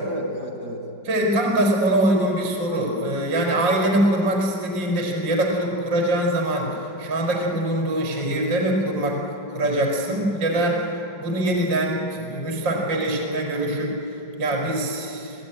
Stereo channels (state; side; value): late; left; 5.0 ms